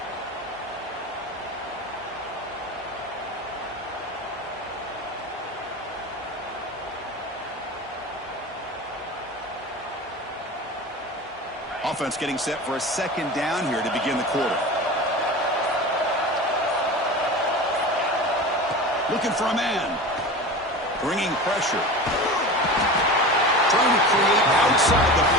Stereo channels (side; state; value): both; normal; correlation 0.31